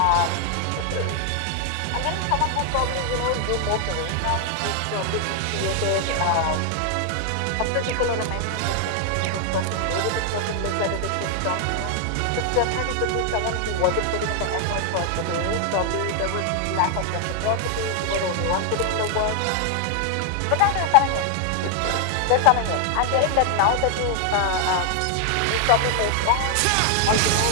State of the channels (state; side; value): different; both; correlation 0.00